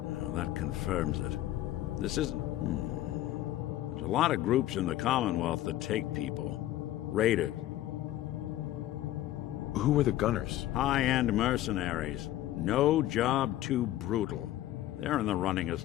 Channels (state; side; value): quieter; right; 14.1 dB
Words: Well, that confirms it. This isn't... There's a lot of groups in the Commonwealth that take people. Raiders. Who were the gunners? High-end mercenaries. No job too brutal. They're in the running